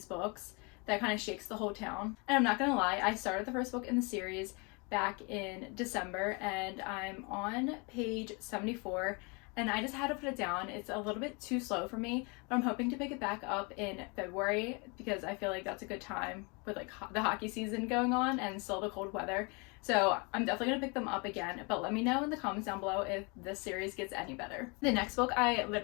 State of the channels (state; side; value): quieter; right; 31.1 dB